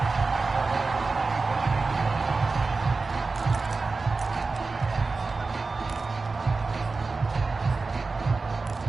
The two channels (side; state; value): left; quieter; 4.0 dB